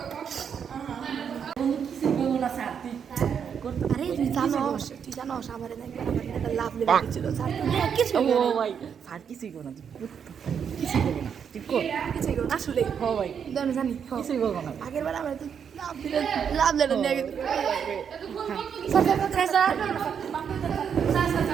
কিছু বলবো না স্যার আরে তুই জানোস আমার একটা লাভ লেগে গেছিল স্যার কিছু ও ভাই স্যার কিছুই করো না কিছুই করো না তুই কর কিছুই করো আসলে হ্যাঁ ভাই আমি জানি কিছুই করবো না আগের বার আমরা তো লাভ লেটার নিয়ে গেছি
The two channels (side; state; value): left; quieter; 7.5 dB